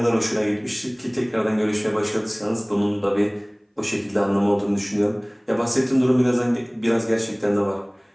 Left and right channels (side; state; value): both; identical; correlation 1.00